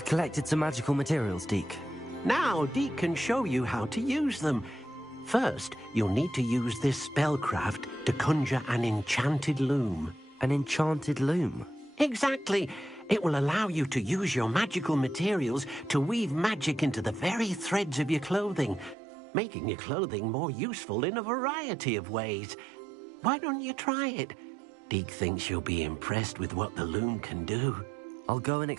collected some magical materials, Deke. Now Deke can show you how to use them. First, you'll need to use this spellcraft to conjure an enchanted loom. An enchanted loom? Exactly. It will allow you to use your magical materials to weave magic into the very threads of your clothing, making your clothing more useful in a variety of ways. Why don't you try it? Deke thinks you'll be impressed with what the loom can do. I'll go and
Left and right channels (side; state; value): left; drops out; at 18.9 s